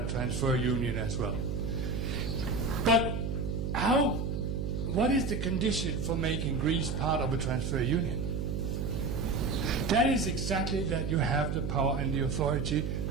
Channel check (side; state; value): right; noise; hum, 1 dB below the sound